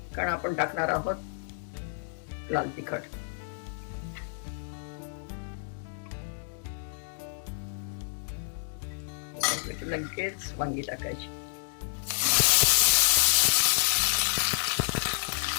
कारण आपण टाकणार आहोत लाल तिखट। लगेच वांगी टाकायची।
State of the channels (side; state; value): right; silent; digital silence